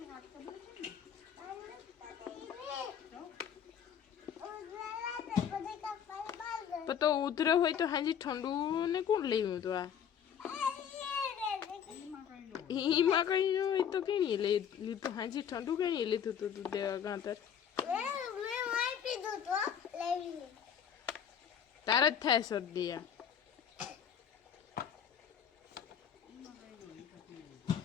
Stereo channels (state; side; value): quieter; right; 8.4 dB